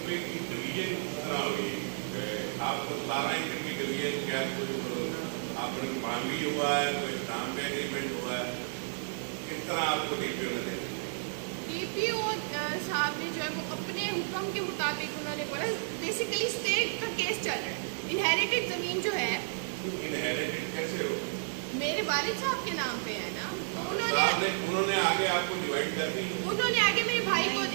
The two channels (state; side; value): silent; left; digital silence